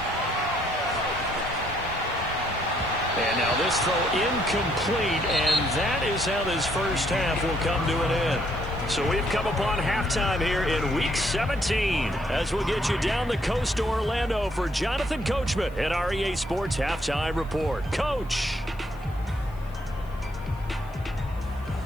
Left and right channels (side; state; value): left; noise; hiss, 29 dB below the sound